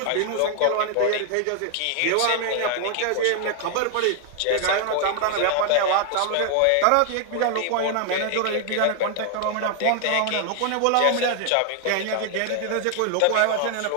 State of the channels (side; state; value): both; different; correlation 0.00